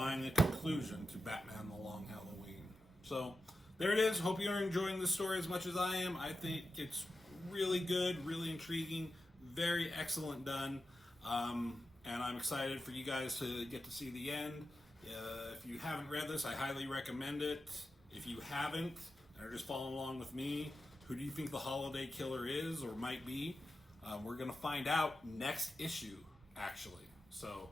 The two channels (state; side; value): normal; both; correlation 0.90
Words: a conclusion to Batman the Long Halloween. So there it is. Hope you're enjoying this story as much as I am. I think it's really good, really intriguing, very excellent done. And I'm excited for you guys to get to see the end. If you haven't read this, I highly recommend it. If you haven't, and are just following along with me, who do you think the holiday killer is or might be? We're going to find out next issue, actually. So